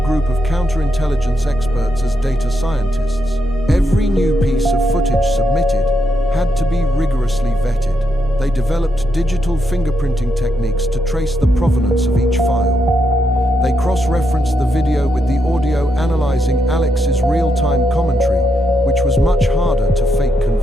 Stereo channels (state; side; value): normal; both; correlation 0.81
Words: group of counterintelligence experts as data scientists. Every new piece of footage submitted had to be rigorously vetted. They developed digital fingerprinting techniques to trace the provenance of each file. They cross-referenced the video with the audio, analyzing Alex's real-time commentary, which was much harder to fake